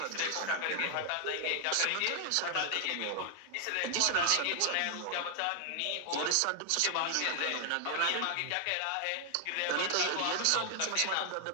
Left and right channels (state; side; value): different; both; correlation 0.00